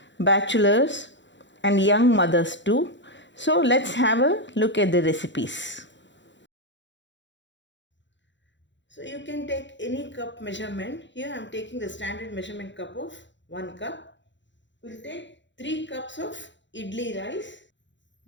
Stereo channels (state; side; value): late; right; 0.53 ms